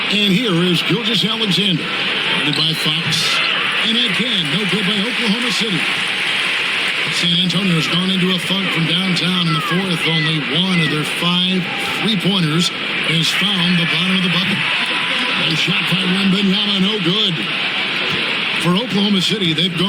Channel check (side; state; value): both; identical; correlation 1.00